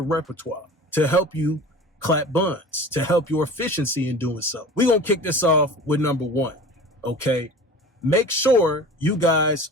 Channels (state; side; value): normal; both; correlation 0.39